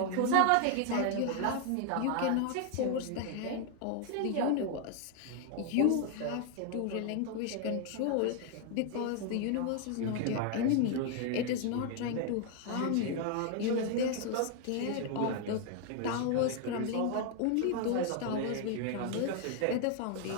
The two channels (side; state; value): both; different; correlation 0.00